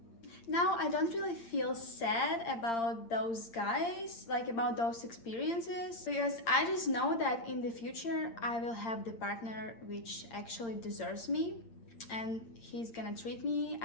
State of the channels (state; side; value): late; right; 8.7 ms